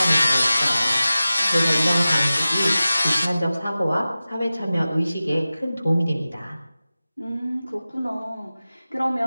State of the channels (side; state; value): both; inverted; correlation -0.96